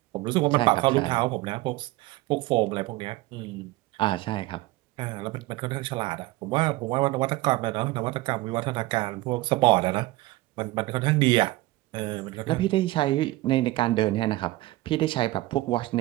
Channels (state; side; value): quieter; left; 18.8 dB